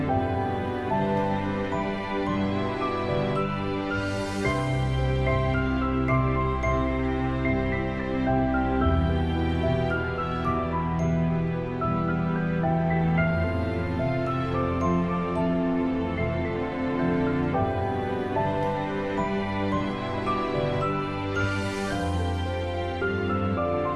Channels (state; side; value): identical; both; correlation 1.00